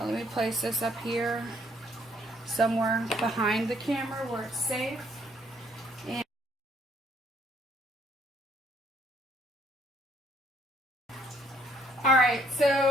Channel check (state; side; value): normal; both; correlation 0.66